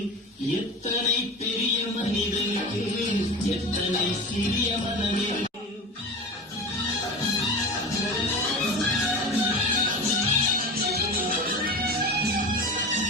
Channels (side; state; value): both; normal; correlation 0.30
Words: எத்தனை பெரிய மனிதனுக்கு எத்தனை சிறிய மனம் இருக்கு.